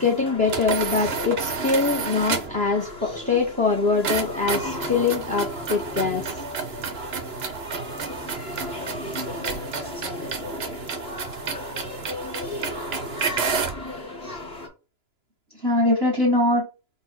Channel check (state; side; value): late; left; 2.9 ms